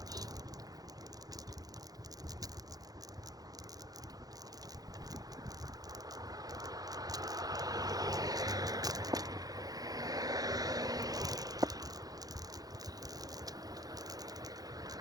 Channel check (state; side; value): late; left; 0.18 ms